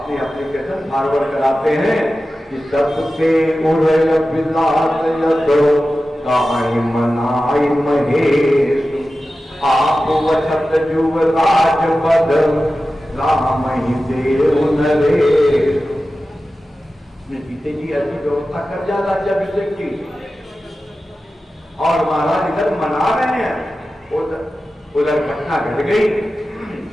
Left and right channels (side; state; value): both; normal; correlation 0.94